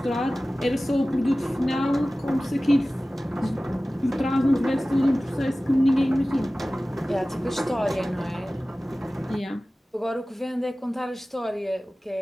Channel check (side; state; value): both; normal; correlation 0.97